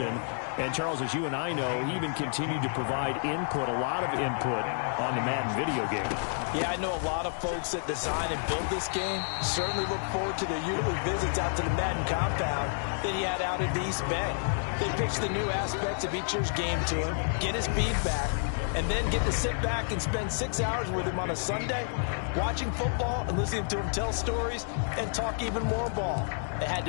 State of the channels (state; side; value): silent; right; digital silence